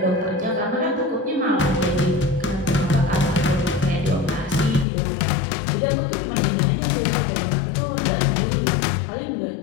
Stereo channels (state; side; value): drops out; right; at 4.9 s